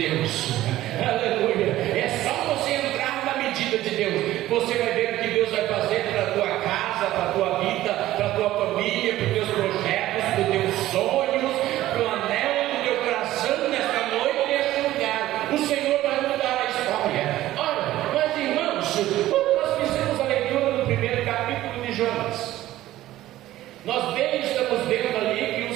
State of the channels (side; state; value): left; quieter; 14.9 dB